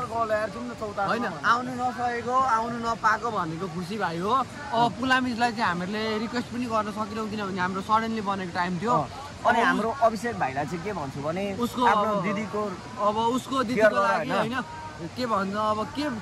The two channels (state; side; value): identical; both; correlation 1.00